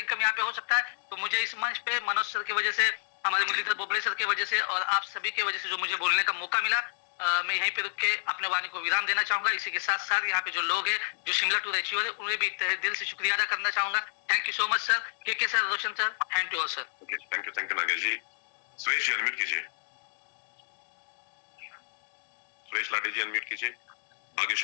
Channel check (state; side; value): silent; right; digital silence